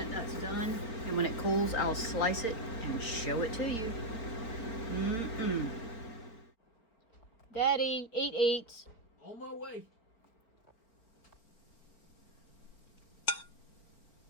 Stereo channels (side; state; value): right; late; 4.4 ms